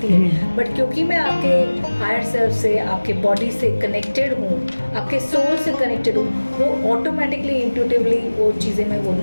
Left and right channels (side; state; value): both; inverted; correlation -1.00